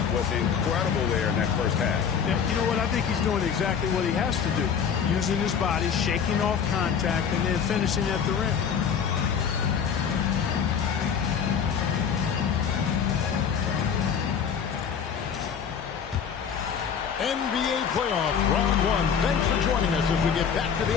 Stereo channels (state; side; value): quieter; right; 7.2 dB